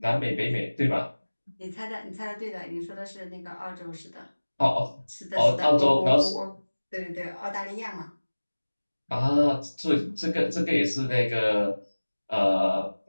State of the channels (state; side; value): inverted; both; correlation -1.00